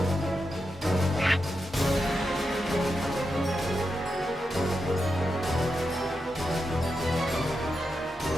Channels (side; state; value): both; normal; correlation 0.87